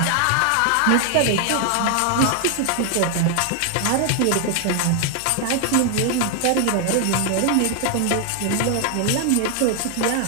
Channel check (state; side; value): different; both; correlation 0.00